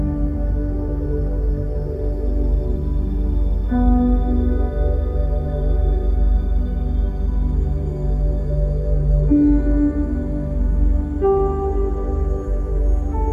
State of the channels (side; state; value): both; identical; correlation 1.00